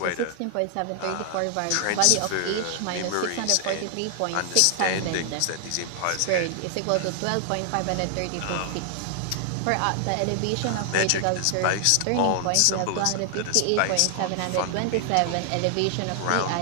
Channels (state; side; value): different; both; correlation 0.00